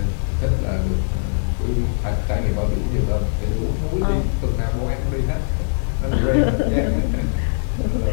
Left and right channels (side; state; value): right; silent; 65 dB below the other